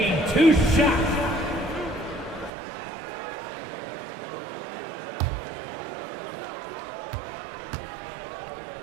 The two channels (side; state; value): left; drops out; at 2.5 s